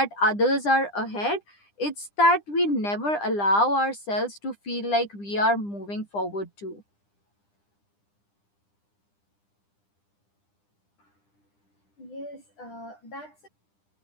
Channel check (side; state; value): right; late; 9.9 ms